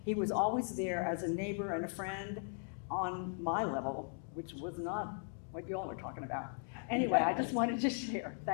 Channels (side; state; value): right; silent; 52 dB below the other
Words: He was always there as a neighbor and a friend on my level, which was not what you all are talking about. Anyway, I just wanted to share.